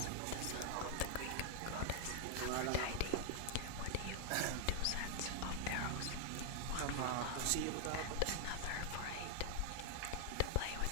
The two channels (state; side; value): different; both; correlation 0.00